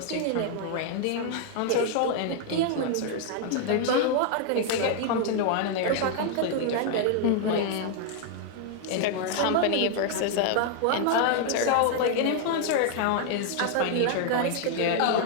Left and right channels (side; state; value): both; different; correlation 0.00